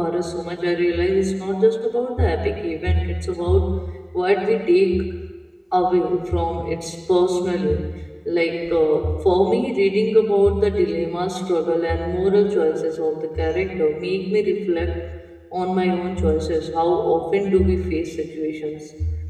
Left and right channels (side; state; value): both; identical; correlation 1.00